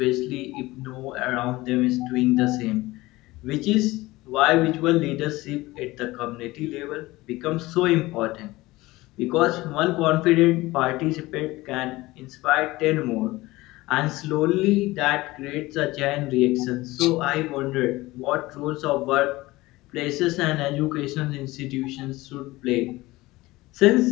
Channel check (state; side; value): quieter; right; 19.6 dB